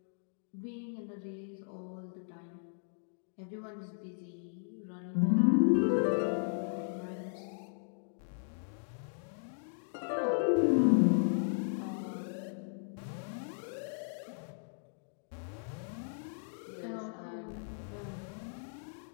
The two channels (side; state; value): right; silent; digital silence